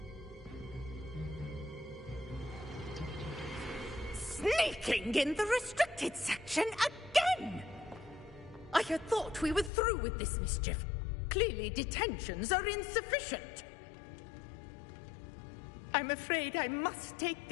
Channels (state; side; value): drops out; right; at 9.7 s